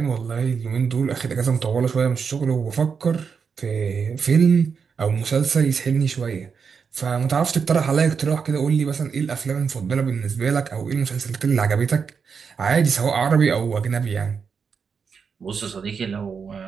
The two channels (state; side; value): quieter; left; 6.1 dB